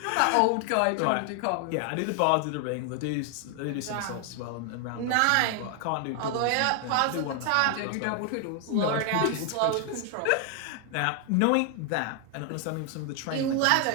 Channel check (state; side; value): different; both; correlation 0.00